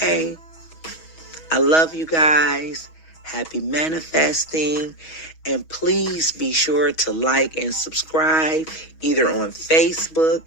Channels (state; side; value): late; right; 6.2 ms